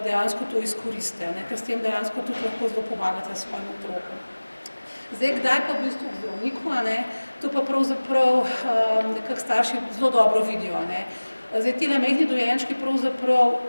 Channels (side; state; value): both; inverted; correlation -1.00